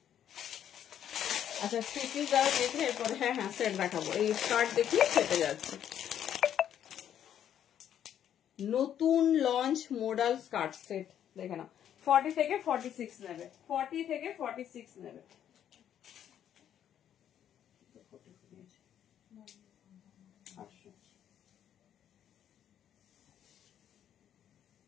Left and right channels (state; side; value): quieter; right; 10.0 dB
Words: আচ্ছা স্টিচিং যারা দেখে এরপরে হ্যাঁ হ্যাঁ সেট দেখাবো, এই স্কার্ট দেখিয়ে সেটে যাচ্ছে। নতুন লঞ্চ মডেল স্কার্ট সেট দেখে নাও, 40 থেকে 46 নেবে, 40 থেকে 46 নেবে।